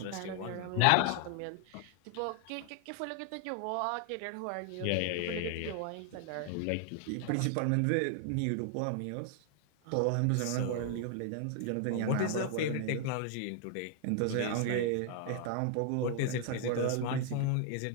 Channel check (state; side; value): different; both; correlation 0.00